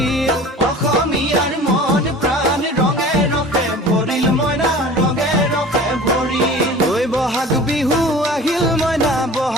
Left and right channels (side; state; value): both; normal; correlation 0.41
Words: অসমীয়াৰ মন প্ৰাণ ৰঙে ৰসে ভৰিল মইনা ৰঙে ৰসে ভৰিল ঐ বহাগ বিহু আহিল মইনা